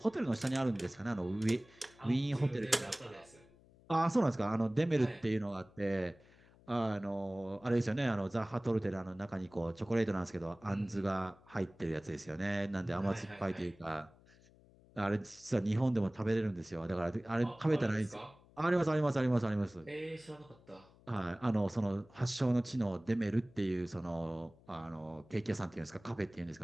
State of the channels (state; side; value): noise; left; hum, 26 dB below the sound